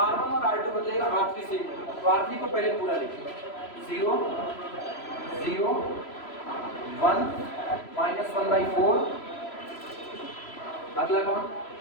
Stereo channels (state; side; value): late; right; 3.0 ms